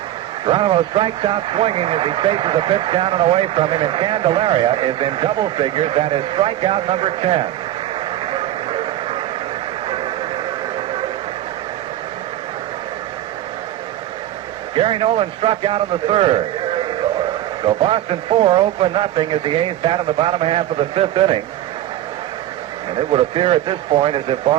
Geronimo strikes out swinging as he faces a pitch down and away from him, and Candeleria is in double figures. That is strikeout number 10. Gary Nolan struck out in the 3rd. So Boston 4, Oakland nothing as the A's bat in the bottom half of the 5th inning. And it would appear at this point as if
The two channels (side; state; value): left; quieter; 13.1 dB